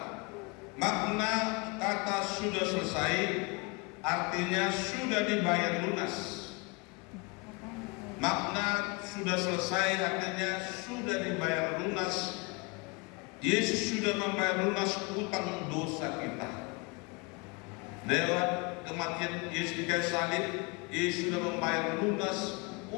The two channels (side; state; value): right; quieter; 28.4 dB